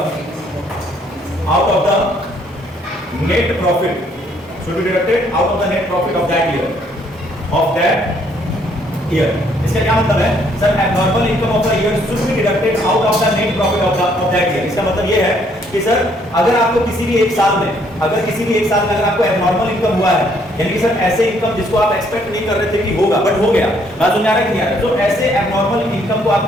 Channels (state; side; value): normal; both; correlation 0.67